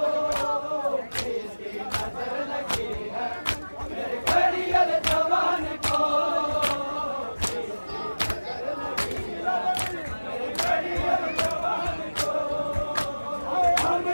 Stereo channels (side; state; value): both; inverted; correlation -1.00